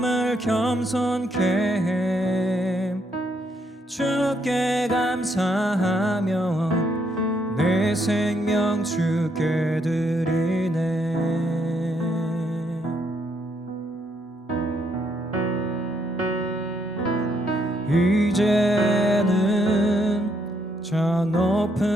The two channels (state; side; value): normal; both; correlation 0.74